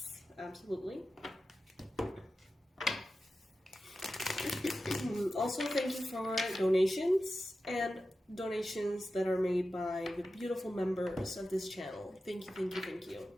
Absolutely. Also, thank you for donations and donations that are made by the beautiful members of this channel. Thank you.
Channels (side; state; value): both; normal; correlation 0.93